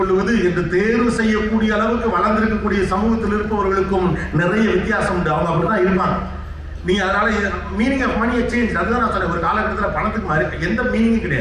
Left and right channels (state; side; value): identical; both; correlation 1.00